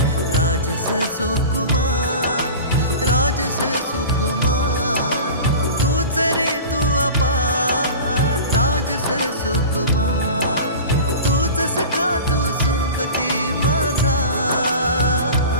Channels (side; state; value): both; inverted; correlation -0.34